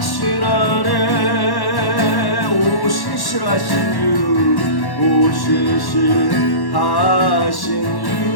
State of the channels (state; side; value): late; right; 1.1 ms